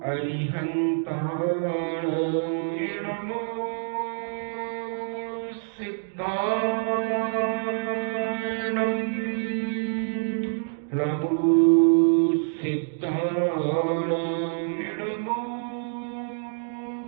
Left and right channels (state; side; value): silent; left; digital silence